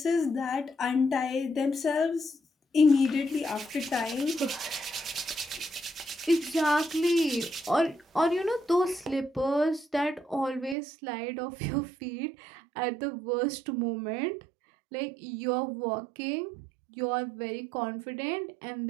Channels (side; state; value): left; drops out; at 10.8 s